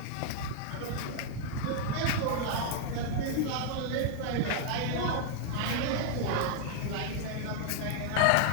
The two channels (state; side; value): different; both; correlation -0.01